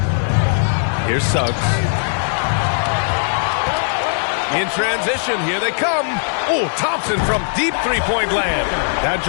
Here's Suggs. In transition, here they come. Oh, Thompson from deep three-point land. That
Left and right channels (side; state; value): right; silent; 67 dB below the other